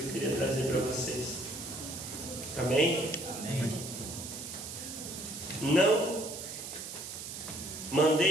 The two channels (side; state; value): right; noise; hiss, 8 dB below the sound